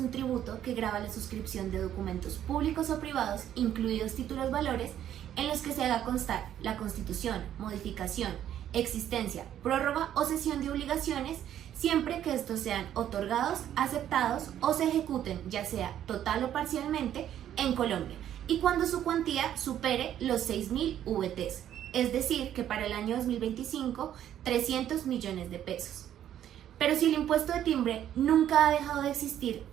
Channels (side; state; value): left; quieter; 10.9 dB